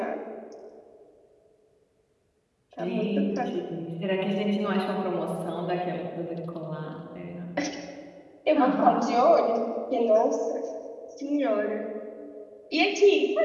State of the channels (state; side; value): identical; both; correlation 1.00